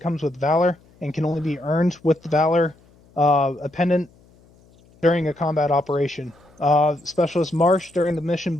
comes with Valor and can only be earned with the Valor appendant during a combat operation. Specialist Marsh during the mission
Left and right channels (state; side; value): noise; left; hum, 29 dB below the sound